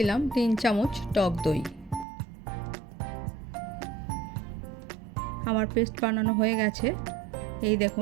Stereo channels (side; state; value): left; drops out; at 2.1 s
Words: 3 চামচ টক দই। আমার পেস্ট বানানো হয়ে গেছে, এই